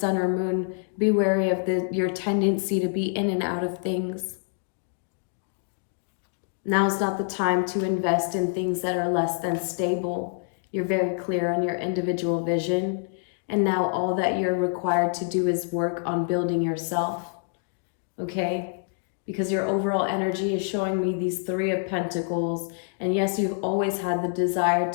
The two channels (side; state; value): right; silent; digital silence